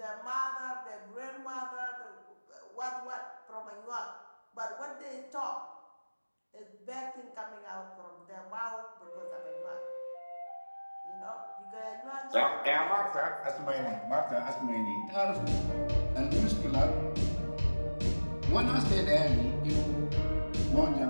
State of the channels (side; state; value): both; inverted; correlation -1.00